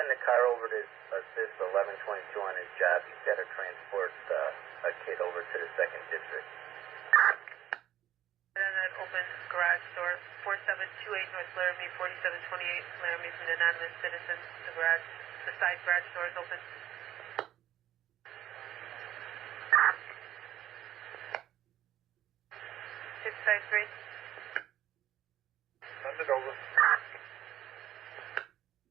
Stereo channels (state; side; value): quieter; left; 12.3 dB